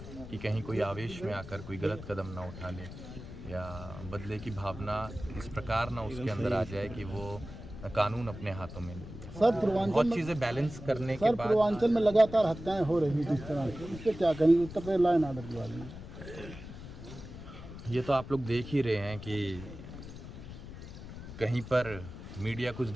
कि कहीं कोई आवेश में आकर कोई गलत कदम ना उठा ले या बदले की भावना इस प्रकार ना उसके अंदर आ जाए कि वो कानून अपने हाथों में ले ले। सर पूर्वांचल बहुत में चीज़ें बैलेंस करने के सर बाद पूर्वांचल में लगातार हत्याएं हो रही थी इस तरह से, इस पे क्या करेंगे Uttar Pradesh law and order के बारे में? ये तो आप लोग देख ही रहे हैं कि कहीं पर मीडिया कुछ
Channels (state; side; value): noise; left; rumble, 12 dB below the sound